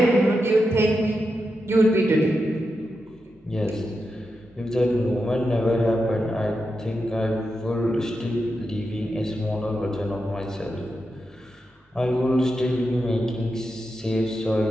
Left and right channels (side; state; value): both; normal; correlation 0.88